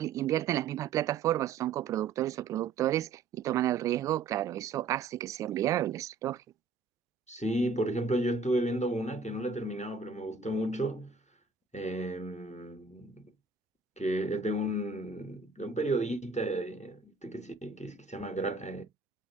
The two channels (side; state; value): left; quieter; 4.6 dB